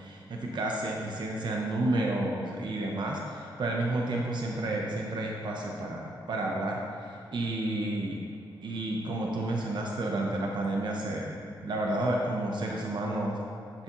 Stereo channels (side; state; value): both; normal; correlation 0.73